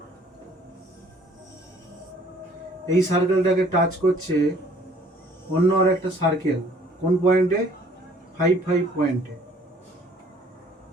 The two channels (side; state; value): both; normal; correlation 0.57